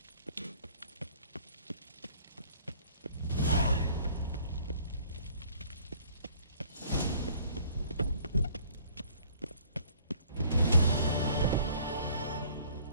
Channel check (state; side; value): inverted; both; correlation -0.56